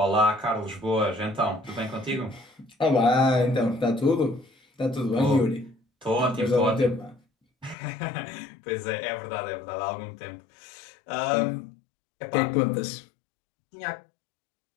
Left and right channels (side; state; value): right; drops out; at 7.8 s